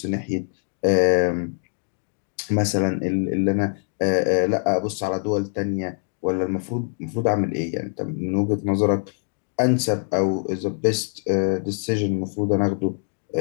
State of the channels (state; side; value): silent; right; 63 dB below the other